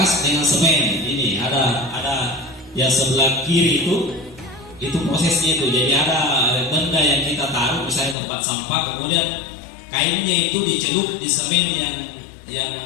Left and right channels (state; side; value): drops out; right; at 8.2 s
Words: dengan semen. Ini ada yang sebelah kiri itu prosesnya itu. Jadi ada benda yang kita taruh, misalnya tempat sampah, kemudian kainnya itu dicelup di semen yang